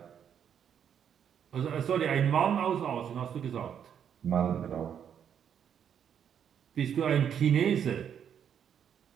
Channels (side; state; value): left; quieter; 8.5 dB